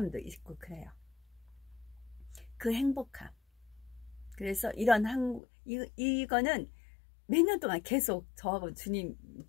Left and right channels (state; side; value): drops out; right; at 5.4 s